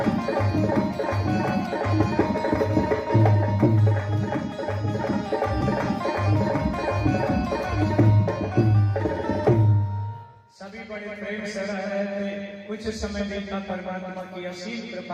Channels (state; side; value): identical; both; correlation 1.00